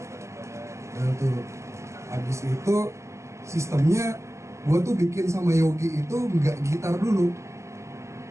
Nah tuh abis itu sistemnya gue tuh bikin sama Yogi itu nggak gitar dulu,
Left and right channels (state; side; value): late; left; 0.14 ms